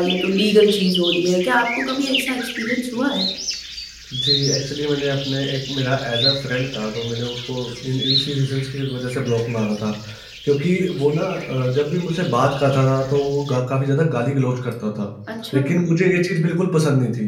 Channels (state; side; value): identical; both; correlation 1.00